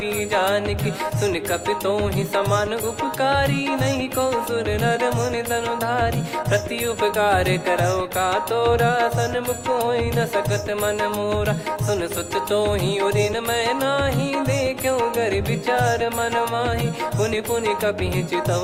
की। सुन कपि तो ही समान उपकारी, नहीं को सुर नर मुनि तनुधारी। प्रति उपकार करौ का तोरा, सन्मुख होई न सकत मन मोरा। सुन सुत तो ही उदिन मैं नाही, देखो गर विचार मन माही। पुनि पुनि कपि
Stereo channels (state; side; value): identical; both; correlation 1.00